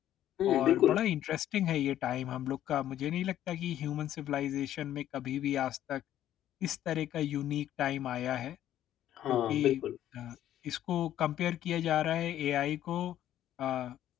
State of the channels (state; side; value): quieter; right; 12.0 dB